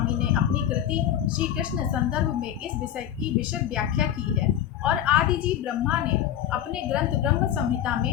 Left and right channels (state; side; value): quieter; right; 10.7 dB